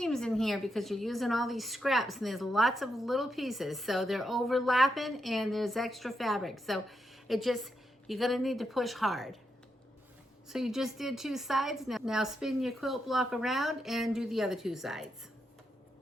in here because you're using all these scraps, and there's lots of little pieces. So they're overlapping and there's extra fabric. So you're going to need to push hard. So you just did 2 sides. Now spin your quilt block around and do the other 2 sides.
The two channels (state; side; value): normal; both; correlation 0.83